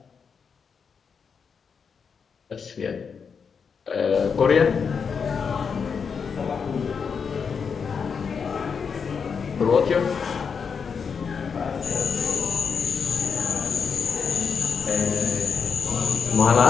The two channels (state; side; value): quieter; right; 6.1 dB